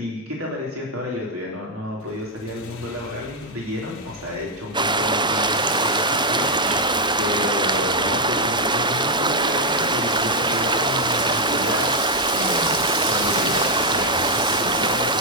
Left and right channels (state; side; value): normal; both; correlation -0.01